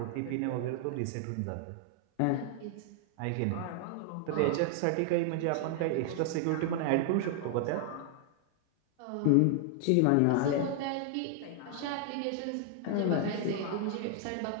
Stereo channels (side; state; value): both; different; correlation 0.00